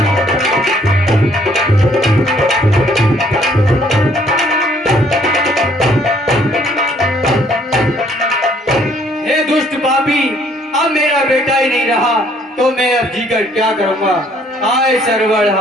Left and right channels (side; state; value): both; normal; correlation 0.63